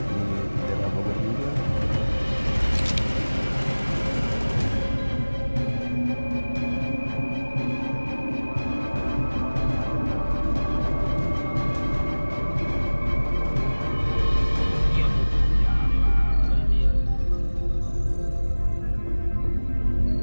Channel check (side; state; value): both; inverted; correlation -1.00